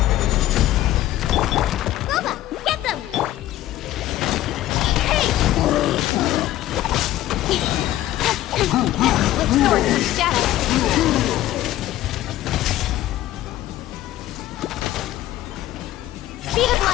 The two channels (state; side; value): quieter; right; 14.4 dB